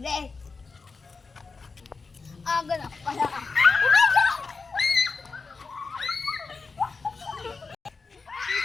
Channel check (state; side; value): quieter; right; 4.5 dB